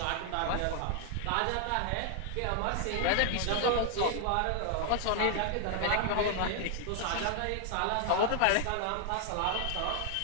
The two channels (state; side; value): different; both; correlation 0.00